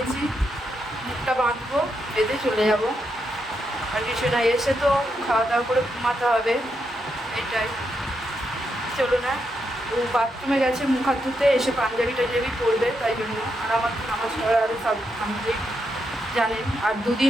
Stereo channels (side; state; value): both; normal; correlation 0.82